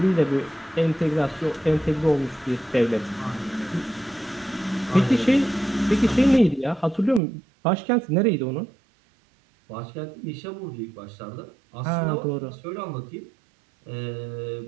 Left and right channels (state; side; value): drops out; left; at 7.2 s